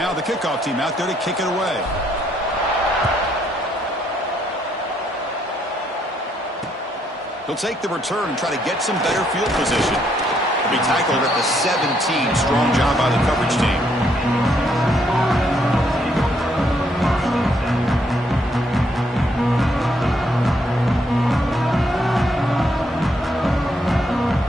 the kickoff team out there to kick it away. He'll take the return and try to get some better field position. He'll be tackled at the 17. Strong job by the coverage team.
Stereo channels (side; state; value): both; normal; correlation 0.72